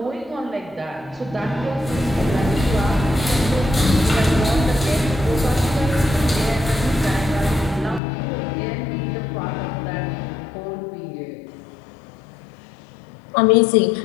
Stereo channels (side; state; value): right; drops out; at 8.0 s